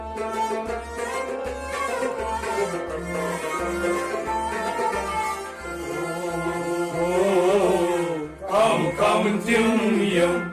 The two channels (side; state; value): both; identical; correlation 1.00